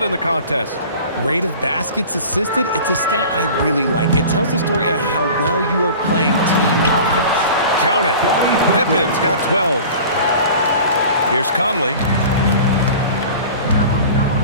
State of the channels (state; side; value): inverted; both; correlation -0.40